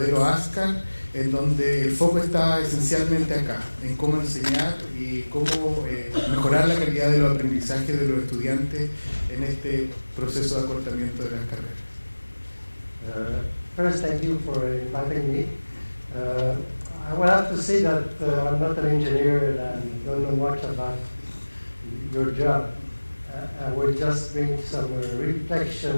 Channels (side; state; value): both; inverted; correlation -1.00